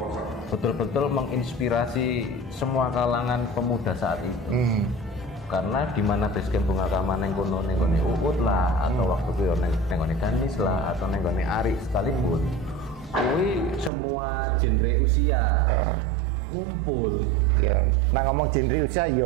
betul-betul menginspirasi semua kalangan pemuda saat itu. Karena di mana basecamp Bunga Kama nengkono Uut lah, atau waktu itu nengkono Ganis lah, atau nengkono Ari sekalipun, kui semua genre usia ngumpul. Nah ngomong genre usia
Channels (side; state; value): left; drops out; at 13.9 s